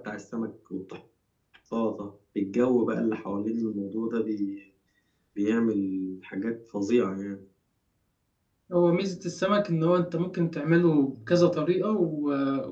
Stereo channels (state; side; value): identical; both; correlation 1.00